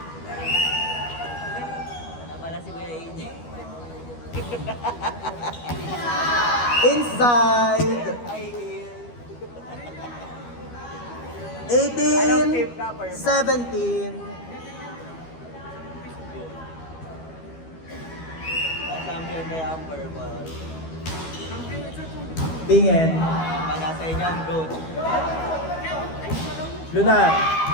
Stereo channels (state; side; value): late; right; 12 ms